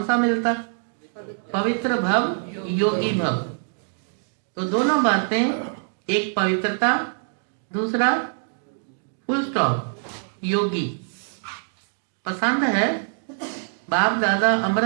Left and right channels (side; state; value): left; silent; 62 dB below the other